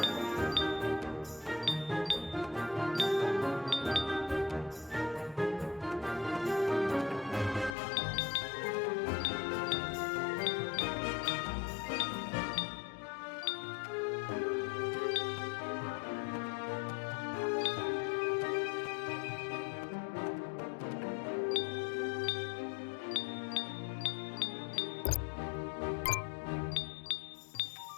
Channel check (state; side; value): drops out; right; at 7.8 s